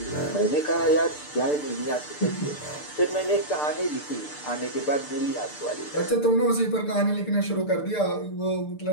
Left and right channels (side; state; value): right; late; 6.7 ms